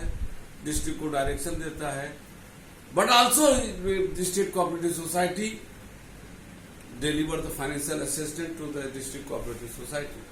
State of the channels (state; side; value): identical; both; correlation 1.00